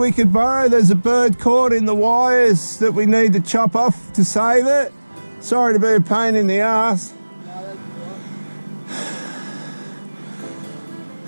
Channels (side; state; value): both; inverted; correlation -1.00